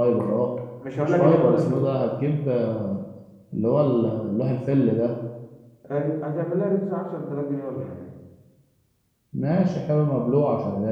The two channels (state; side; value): identical; both; correlation 1.00